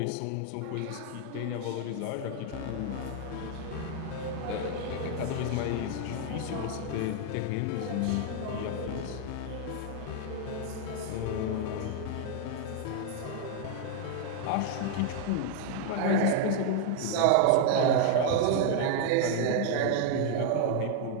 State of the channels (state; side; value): different; both; correlation 0.00